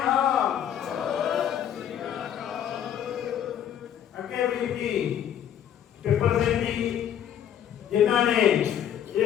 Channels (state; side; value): quieter; right; 9.7 dB